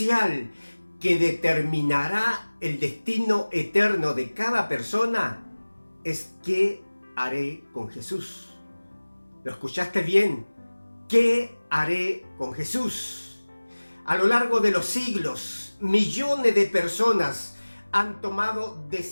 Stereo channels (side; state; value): both; inverted; correlation -1.00